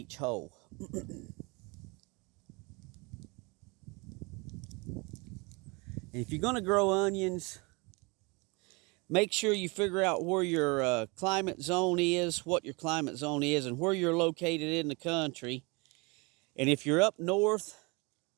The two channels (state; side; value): quieter; left; 28.1 dB